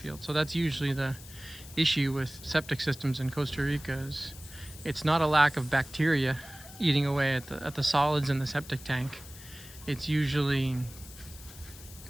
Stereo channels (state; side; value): noise; left; hiss, 17 dB below the sound